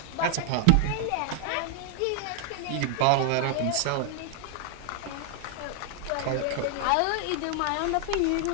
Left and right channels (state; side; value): different; both; correlation 0.00